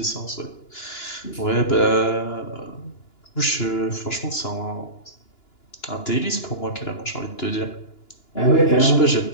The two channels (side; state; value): right; late; 2.9 ms